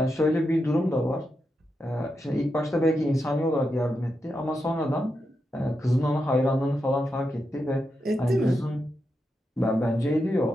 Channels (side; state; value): both; normal; correlation 0.86